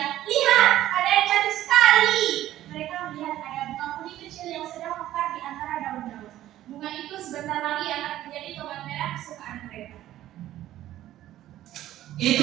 lihat, ada yang cantik sekali. Mereka melihat ada bunga kuning kecil yang sedang mekar di antara daun-daun. Bunga itu sebentar lagi akan menjadi tomat merah kesukaan mereka. Itu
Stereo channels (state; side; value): quieter; left; 13.6 dB